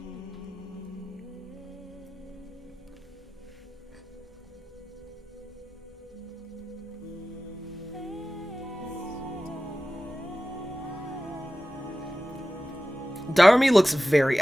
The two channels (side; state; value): both; normal; correlation 0.95